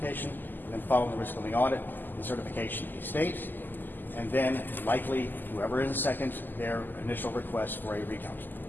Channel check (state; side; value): late; right; 0.089 ms